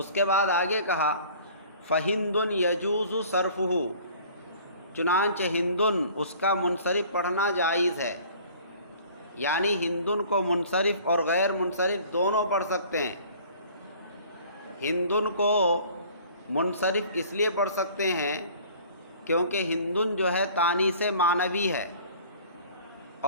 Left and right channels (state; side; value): inverted; both; correlation -0.49